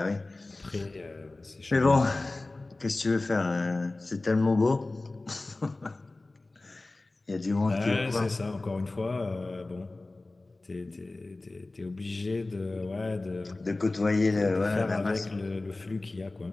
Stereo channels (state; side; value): quieter; right; 3.1 dB